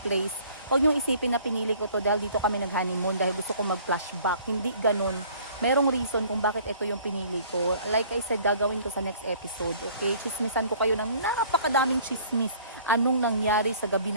huwag niyong isipin na pinili ko to dahil dito kami nag-honeymoon dahil gusto ko mag-flashback. Hindi ganun. Merong reason kung bakit ito yung pinili ko. Like I said, gagawin ko sa next episode. Okay? Chismisan ko kayo ng napakadaming chismis. Anong nangyari sa gabi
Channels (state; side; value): inverted; both; correlation -0.54